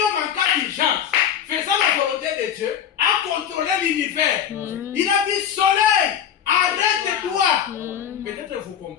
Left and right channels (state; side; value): quieter; right; 9.1 dB